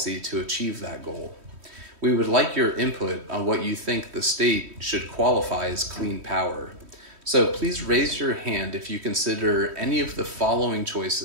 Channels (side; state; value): left; late; 3.1 ms